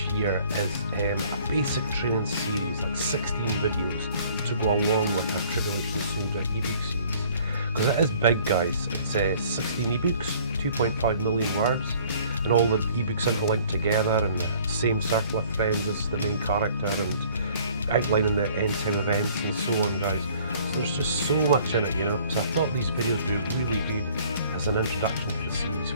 year is a basic training series, like 16 videos to go along with our Tribulation Soldier ebook series. Because it is big, guys. It's 16 ebooks, 2.5 million words, and all the ebooks interlinked together, and the same circle of friends as the main character, and outlining the end time events and so on, guys. So there's just so much in it, you know. So I thought these videos would be really good as an introduction to the series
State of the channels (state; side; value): inverted; both; correlation -0.55